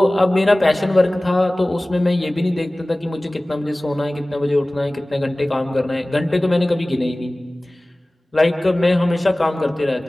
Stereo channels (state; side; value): normal; both; correlation 0.98